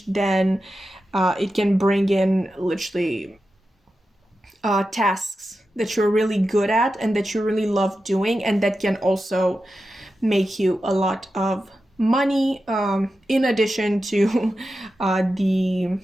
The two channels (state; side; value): normal; both; correlation 0.91